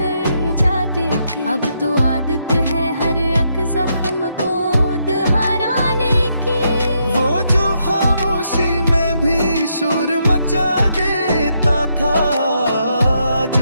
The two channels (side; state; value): both; inverted; correlation -0.78